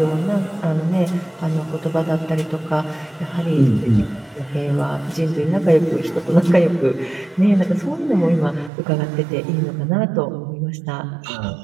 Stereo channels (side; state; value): left; drops out; at 8.7 s